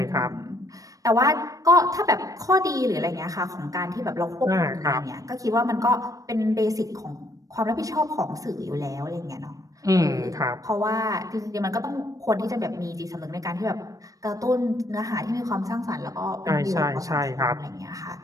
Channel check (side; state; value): left; late; 0.16 ms